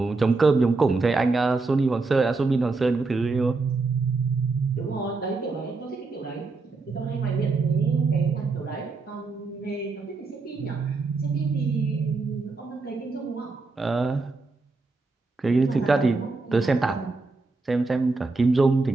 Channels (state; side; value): quieter; left; 3.8 dB